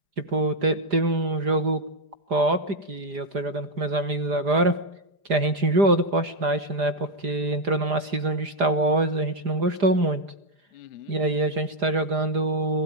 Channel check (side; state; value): left; late; 4.9 ms